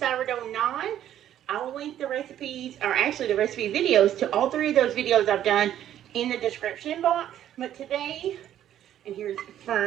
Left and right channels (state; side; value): quieter; left; 11.3 dB